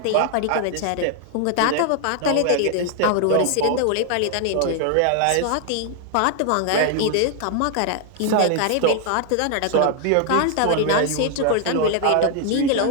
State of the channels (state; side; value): different; both; correlation 0.00